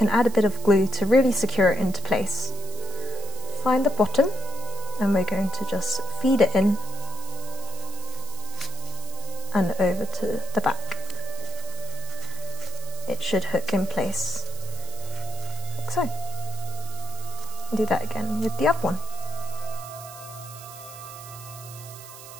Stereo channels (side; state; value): right; noise; hiss, 14 dB below the sound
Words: add a bit of glue to really secure it into place. Find the bottom, and we're going to just feed it in and over to the back. It should hook in place, like so. Do that again with the other one.